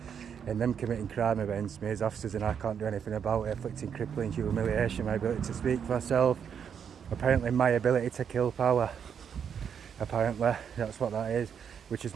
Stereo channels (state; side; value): quieter; left; 7.6 dB